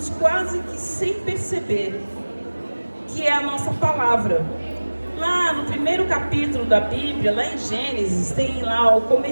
quase que sem perceber, que é a nossa palavra. Lá no primeiro capítulo da Bíblia, lá em Gênesis, tem lá o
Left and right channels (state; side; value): inverted; both; correlation -1.00